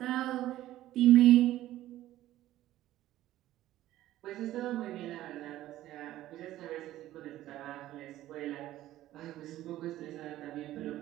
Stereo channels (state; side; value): quieter; left; 14.4 dB